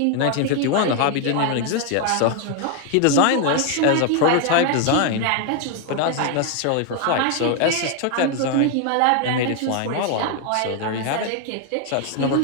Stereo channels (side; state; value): both; different; correlation 0.00